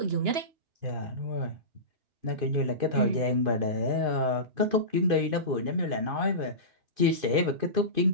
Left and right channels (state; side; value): late; left; 2.5 ms